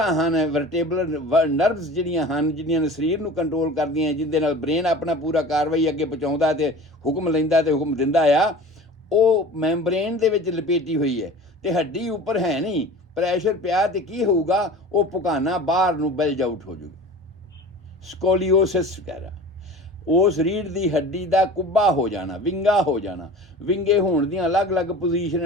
ਹਨ, ਵਰਟੇਬਲਰ ਨਰਵਸ ਜਿਹੜੀਆਂ ਹਨ, ਜਿਹੜੀਆਂ ਸਰੀਰ ਨੂੰ ਕੰਟਰੋਲ ਕਰਦੀਆਂ, ਜਿਹਦੇ ਨਾਲ ਬ੍ਰੇਨ ਆਪਣਾ ਪੂਰਾ ਕਾਰਵਾਈ ਅੱਗੇ ਪਹੁੰਚਾਉਂਦਾ ਤੇ ਹੁਕਮ ਲੈਂਦਾ ਤੇ ਹੁਕਮ ਦਿੰਦਾ ਆ, ਉਹ ਮੈਂਬਰੇਨ ਦੇ ਵਿੱਚ ਲਪੇਟੀ ਹੋਈ ਹੈ ਤੇ ਹੱਡੀ ਉੱਪਰ ਹੈ ਨਹੀਂ। ਪ੍ਰੈਸ਼ਰ ਪਿਆ ਤੇ ਕੀ ਹੋਊਗਾ? ਉਹ ਪੁਕਾਨਾ ਬਾਹਰ ਨੂੰ ਬਲਜ ਆਊਟ ਹੋ ਜਾਊਗਾ, ਸਕੋਲੀਓਸਿਸ ਵਗੈਰਾ। ਉਸ ਰੀੜ੍ਹ ਦੀ ਹੱਡੀ ਦਾ ਕੁੱਬਾ ਹੋ ਜਾਣਾ, ਵਿੰਗਾ ਹੋ ਜਾਣਾ। ਵਿੰਗੇ ਹੋਣ ਦੀਆਂ ਅਲੱਗ-ਅਲੱਗ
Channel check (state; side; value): normal; both; correlation 0.39